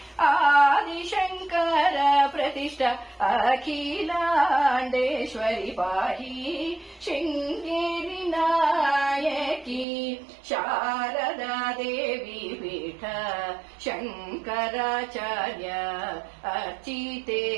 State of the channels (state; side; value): drops out; left; at 9.9 s